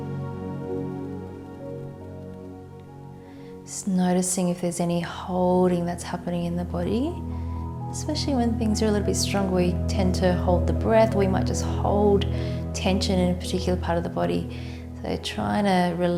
Just noticing if there's any holding that's happening in the body, especially when things are a little bit stronger. We tend to hold the breath. We might just hold tension in a particular part of the body. So trying to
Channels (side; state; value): both; identical; correlation 1.00